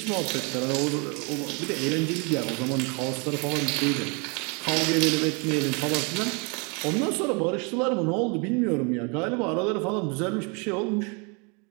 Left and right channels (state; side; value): quieter; left; 32.8 dB